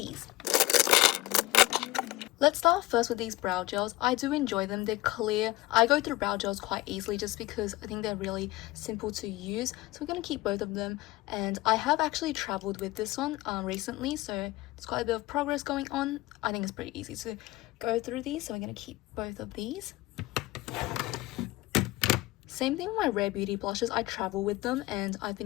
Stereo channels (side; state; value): right; quieter; 19.1 dB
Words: Let's start first with these brow gels. I do enjoy them. They're clear. I go through brow gels quite easily just because I think they're really simple to use. So we're going to keep both of them. And I have actually traveled with this one recently, so there's quite a bit of progress going on. I think it's pretty easy to go through these, so we're going to keep both of these. Same thing with my Rare Beauty blushes. I travel with them and I've